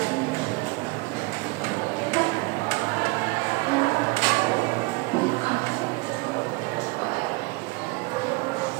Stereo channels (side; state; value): left; quieter; 25.1 dB